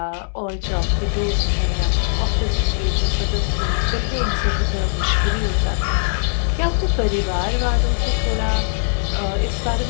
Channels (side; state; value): right; silent; 66 dB below the other